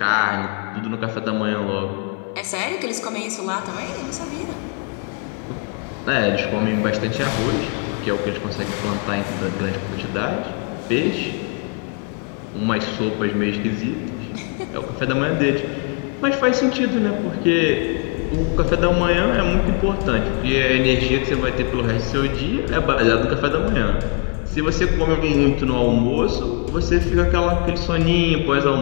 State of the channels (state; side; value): quieter; right; 36.7 dB